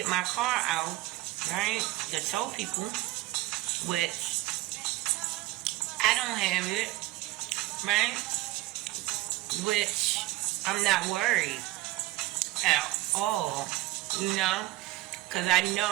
my car out, right? To tow people, which I don't have it, right? Which I'm not worried at all, you know? Because I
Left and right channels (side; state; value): left; quieter; 18.1 dB